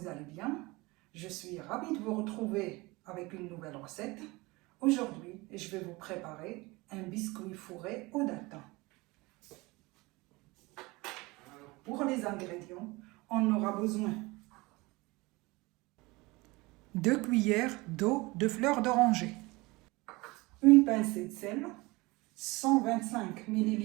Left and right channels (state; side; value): quieter; left; 23.1 dB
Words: allez bien. Je suis ravie de vous retrouver avec une nouvelle recette. Aujourd'hui, je vais vous préparer un biscuit fourré aux dattes. Pour les ingrédients, on aura besoin 2 cuillères d'eau de fleur d'oranger, une pincée de sel, 125